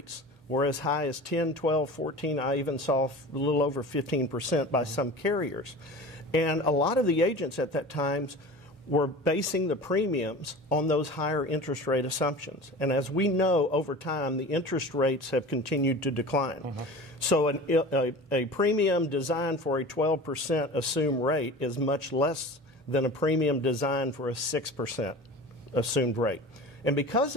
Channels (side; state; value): both; normal; correlation 0.36